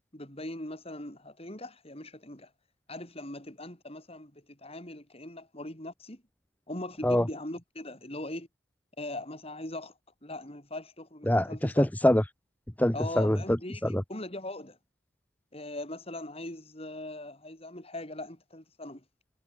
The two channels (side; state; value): both; normal; correlation 0.86